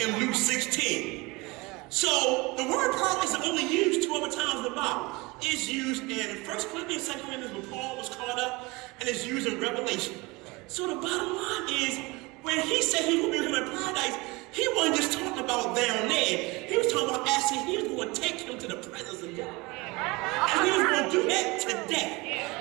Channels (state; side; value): quieter; left; 24.2 dB